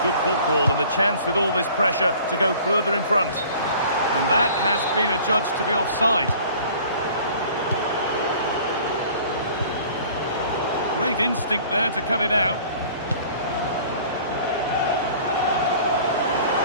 good football and the chance with all this pressure to go further in front. And that has been adjudged to be offside. Great instinct there to cut it out.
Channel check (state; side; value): inverted; both; correlation -0.49